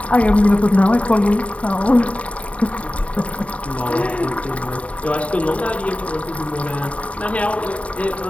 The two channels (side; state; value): right; late; 0.065 ms